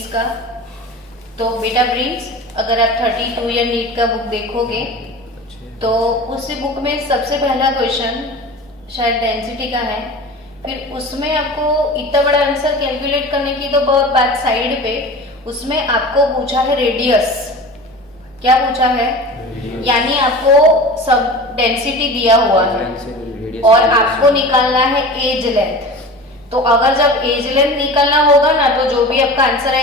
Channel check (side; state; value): both; normal; correlation 0.35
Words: का। तो बेटा प्रिंस, अगर आप 32 या नीट का बुक देखोगे तो उसी बुक में सबसे पहला क्वेश्चन शायद डेंसिटी का है। फिर उसमें आपको इतना बड़ा आंसर कैलकुलेट करने की तो बहुत बात साइड पे, उसमें आपको पूछा है रेडियस। क्या पूछा है? यानी आपको सब डेंसिटी दिया हुआ है और आपको निकालना है एज लेंथ। तो अगर जब एज लेंथ निकालना होगा ना, तो जो भी आपका आंसर